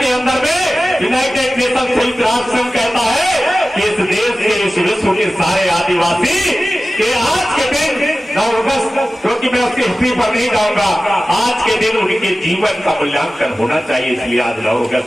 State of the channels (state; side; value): normal; both; correlation 0.95